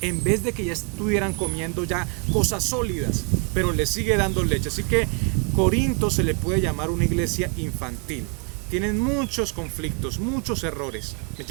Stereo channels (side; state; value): left; quieter; 35.7 dB